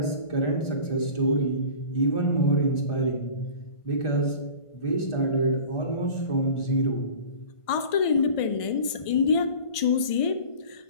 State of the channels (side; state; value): right; late; 1.5 ms